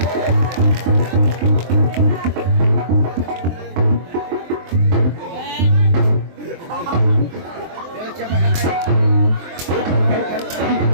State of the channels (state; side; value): late; left; 23 ms